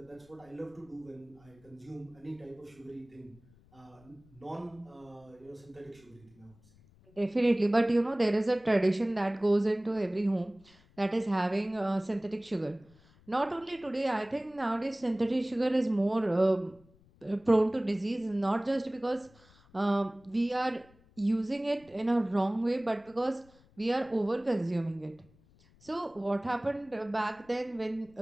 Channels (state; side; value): noise; left; rumble, 28 dB below the sound